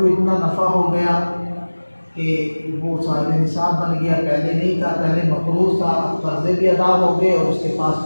اتنا نفع ہو گیا کہ وہ صاحب نصاب بن گیا، پہلے نہیں تھا، پہلے مقروض تھا، اب قرضے بھی ادا ہو گئے اور اس کے پاس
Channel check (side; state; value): both; inverted; correlation -1.00